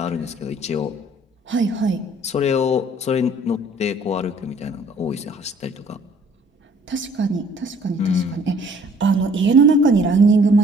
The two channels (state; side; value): normal; both; correlation 0.56